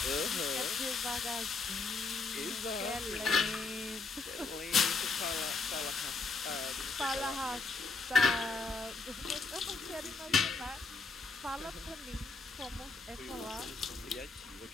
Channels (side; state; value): right; quieter; 3.9 dB